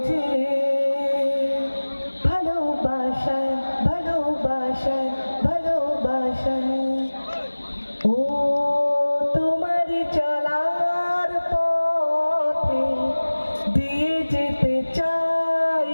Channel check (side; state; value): both; inverted; correlation -1.00